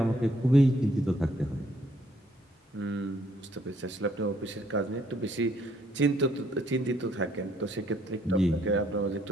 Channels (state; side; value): normal; both; correlation 0.66